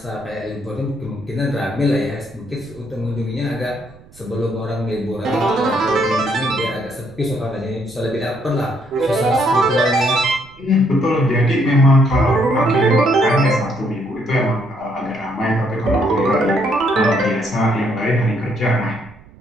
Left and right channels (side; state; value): right; noise; rumble, 24 dB below the sound